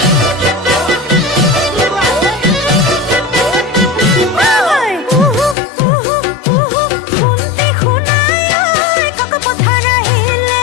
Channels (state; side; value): drops out; right; at 5.6 s